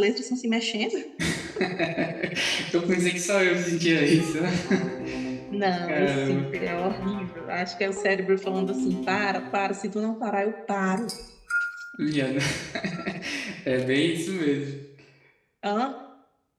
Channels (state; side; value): identical; both; correlation 1.00